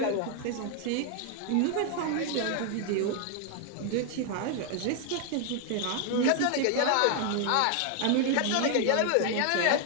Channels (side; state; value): both; different; correlation 0.00